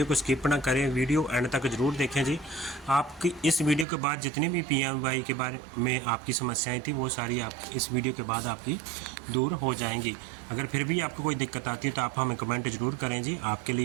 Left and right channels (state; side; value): drops out; left; at 3.9 s